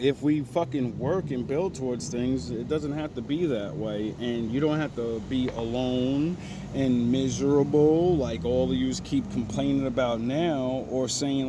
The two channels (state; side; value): identical; both; correlation 1.00